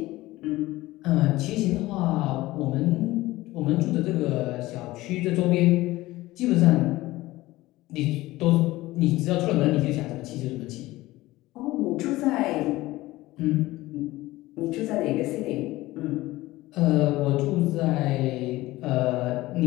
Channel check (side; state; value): right; quieter; 18.2 dB